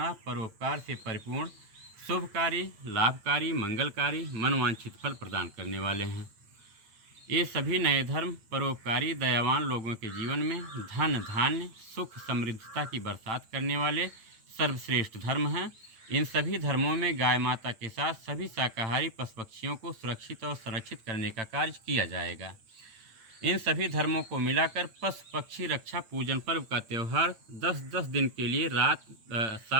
परोपकार से परिपूर्ण, शुभकारी, लाभकारी, मंगलकारी, मनवांछित फल प्रदान करने वाले हैं। ये सभी नए धर्म परोपकारी, दयावान लोगों के जीवन में धन, धान्य, सुख, समृद्धता की बरसात करने वाले सर्वश्रेष्ठ धर्म हैं। इन सभी धर्मों में गाय माता के साथ सभी शाकाहारी पशु पक्षियों को सुरक्षित और संरक्षित करने का कार्य किया जाएगा। इन सभी धर्मों को मिलाकर पशु पक्षी रक्षा पूजन पर्व का त्यौहार 10-10 दिन के लिए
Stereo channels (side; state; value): left; late; 8.9 ms